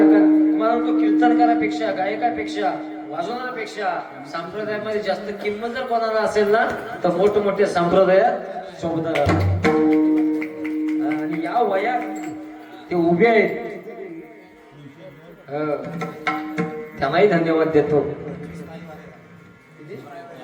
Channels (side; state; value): both; identical; correlation 1.00